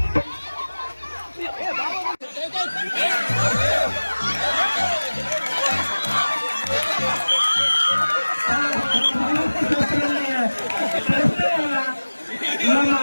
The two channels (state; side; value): inverted; both; correlation -1.00